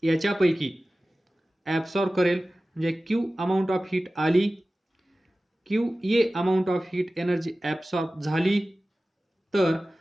याच्यापैकी ॲब्सॉर्ब करेल, म्हणजे क्यू अमाऊंट ऑफ हीट आली, Q A amount of heat energy absorb झाली. तर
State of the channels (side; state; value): both; normal; correlation 0.96